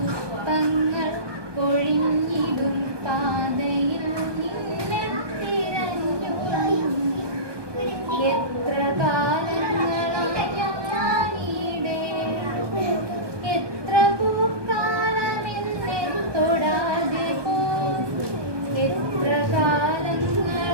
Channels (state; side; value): late; left; 1.2 ms